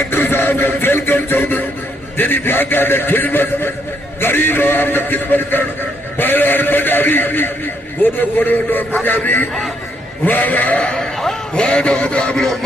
साहब का वेलकम चौधरी तेरी भागा ने खिदमत गरीब आवाम ने खिदमत कर पहलवान पंजाबी गोदो पंजाबी वाह दो मुकाबलो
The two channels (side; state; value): both; normal; correlation 0.73